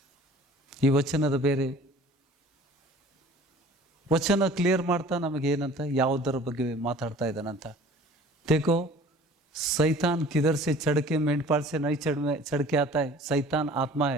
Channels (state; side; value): normal; both; correlation 0.47